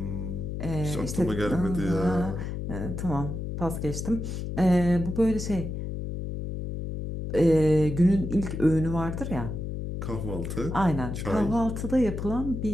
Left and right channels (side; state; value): left; noise; hum, 5 dB below the sound